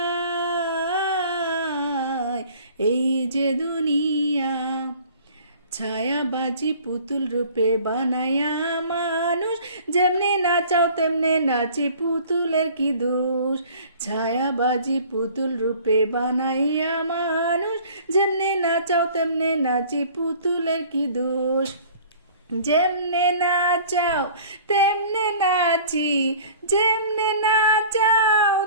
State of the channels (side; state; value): both; inverted; correlation -0.49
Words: এই যে দুনিয়া ছায়াবাজি পুতুল রূপে বানায়া মানুষ, যেমনে নাচাও তেমনে নাচে পুতুলের কি দোষ। ছায়াবাজি পুতুল রূপে বানাইয়া মানুষ, যেমনে নাচাও তেমনে নাচে পুতুলের কি দোষ। যেমনে নাচাও তেমনে নাচি, যেমনে নাচাও